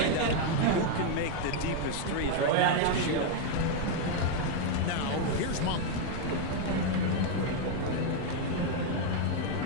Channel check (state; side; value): different; both; correlation 0.01